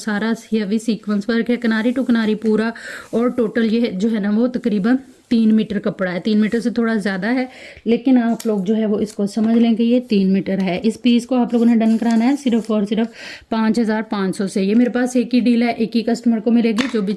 हैवी सीक्वेंस वर्क है, किनारी टू किनारी पूरा। और टोटल ये जो है ना वो तकरीबन 3 मीटर कपड़ा है, 3 मीटर से थोड़ा ज़्यादा है, लेकिन आप लोग जो है वो इसको समझ लें कि ये 3 मीटर है। इस पीस को आप लोगों ने डन कराना है सिर्फ और सिर्फ 5500 से। ये मेरे पास एक ही डील है, एक ही कस्टमर को मिलेगी। जो भी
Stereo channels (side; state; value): both; identical; correlation 1.00